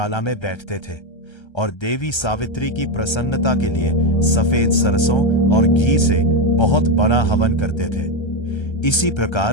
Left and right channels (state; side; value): late; right; 1.3 ms